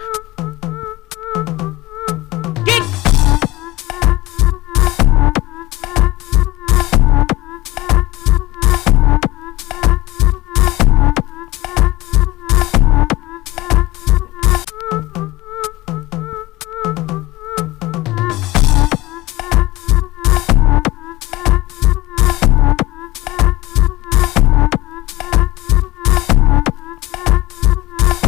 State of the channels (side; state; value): right; quieter; 19.0 dB